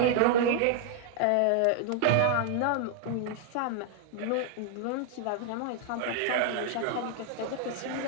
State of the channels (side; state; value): both; different; correlation 0.00